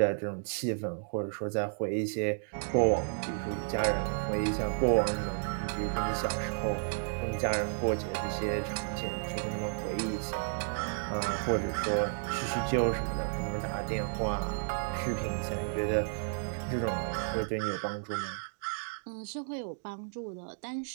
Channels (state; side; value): silent; left; digital silence